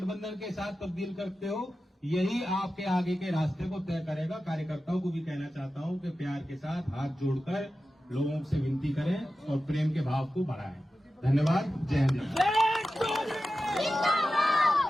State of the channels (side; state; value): both; normal; correlation 0.93